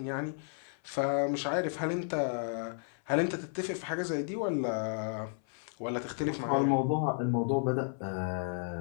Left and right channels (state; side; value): silent; right; 56 dB below the other